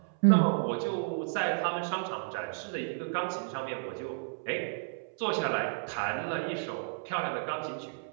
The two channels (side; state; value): left; silent; 56 dB below the other